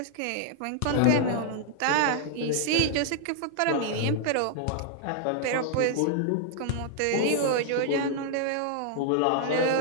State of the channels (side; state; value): both; different; correlation 0.00